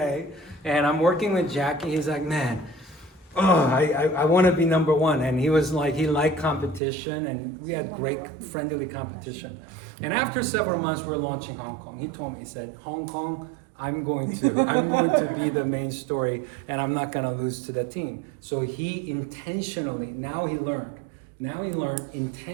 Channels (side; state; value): left; drops out; at 6.8 s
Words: And I'm working with Jackie. He's like, man, I want to be number one. And he was like, he liked competition, and we had great friendly competition. And after several months, we're launching Hong Kong. He told me, he said, Hong Kong, I'm going to be the main story, and I'm not going to lose to the team. So he intentionally, now he learned,